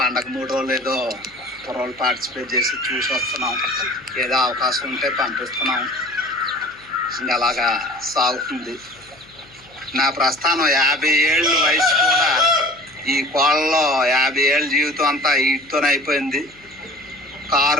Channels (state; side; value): noise; left; hum, 27 dB below the sound